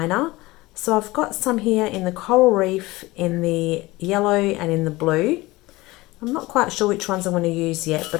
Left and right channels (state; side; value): quieter; right; 20.3 dB